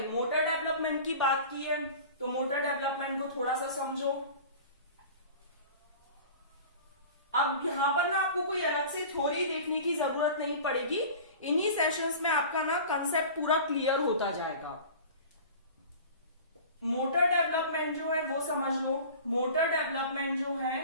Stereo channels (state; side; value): inverted; both; correlation -0.39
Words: मोटर डेवलपमेंट की बात की है, तो मोटर डेवलपमेंट को थोड़ा सा समझो। अब यहां पर ना आपको कोई अलग से थ्योरी देखने की जरूरत नहीं पड़ेगी, इन्हीं सेशंस में आपका ना कंसेप्ट पूरा क्लियर होता जाएगा। मोटर डेवलपमेंट जो है वो समझ लो। मोटर डेवलपमेंट जो